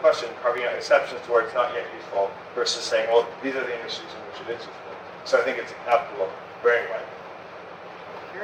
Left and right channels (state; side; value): identical; both; correlation 1.00